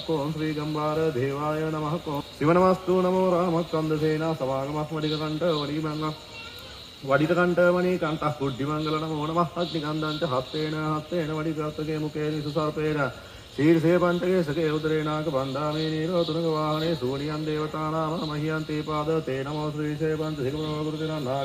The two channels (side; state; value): both; identical; correlation 1.00